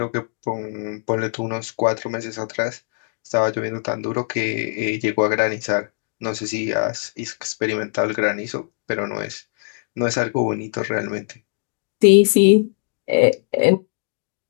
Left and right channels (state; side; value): silent; right; digital silence